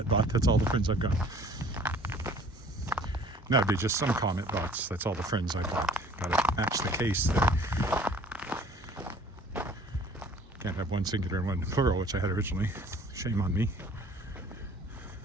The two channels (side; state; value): both; normal; correlation 0.52